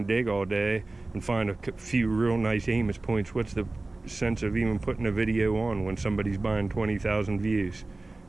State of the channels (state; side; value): quieter; left; 3.1 dB